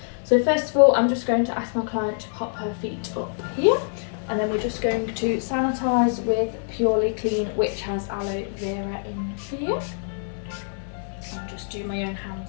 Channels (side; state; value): right; silent; 62 dB below the other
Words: So first of all, I'm just going to ask my client to pop her feet up here, and then we're just going to sanitise with Purely Clean, which has aloe vera in here. I'll just do my own